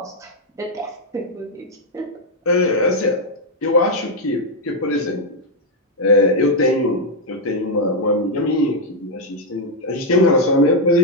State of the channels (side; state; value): both; normal; correlation 0.00